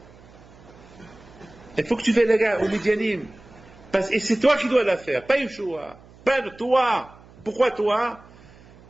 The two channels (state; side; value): noise; right; hum, 23 dB below the sound